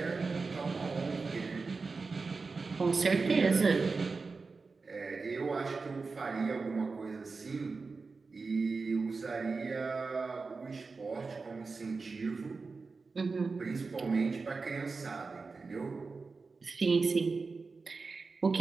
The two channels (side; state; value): left; quieter; 4.3 dB